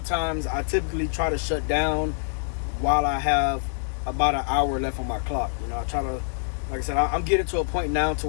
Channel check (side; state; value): right; silent; digital silence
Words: times I typically try to shut down while I have about an hour left on my clock. You know, I try to, like I said, I'm getting to a point now to